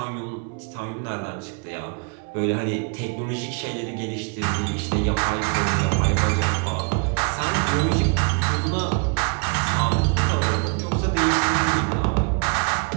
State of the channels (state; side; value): quieter; left; 36.6 dB